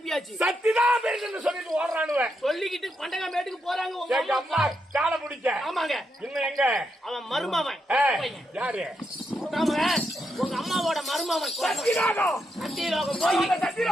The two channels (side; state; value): both; normal; correlation 0.82